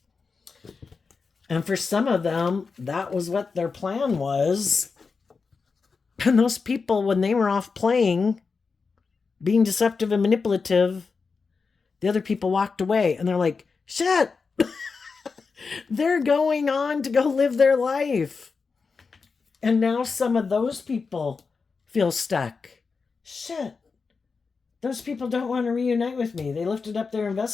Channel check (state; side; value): quieter; right; 4.8 dB